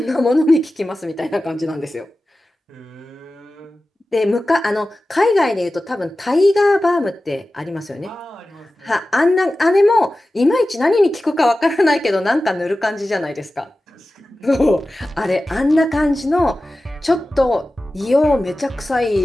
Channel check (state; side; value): normal; both; correlation 0.95